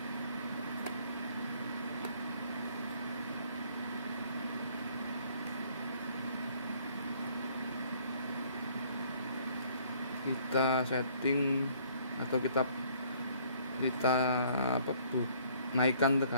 Kita setting atau kita naikkan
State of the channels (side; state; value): both; inverted; correlation -0.61